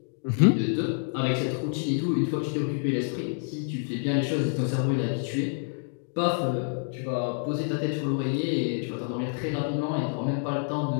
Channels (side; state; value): right; silent; 60 dB below the other